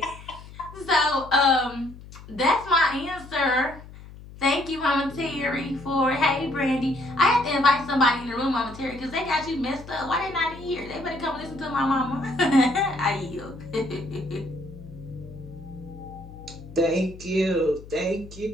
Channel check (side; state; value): left; noise; hum, 17 dB below the sound